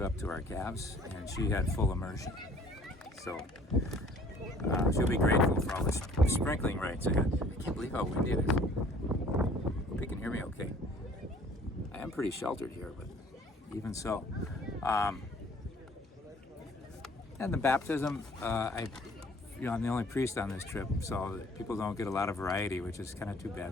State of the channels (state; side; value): normal; both; correlation 0.54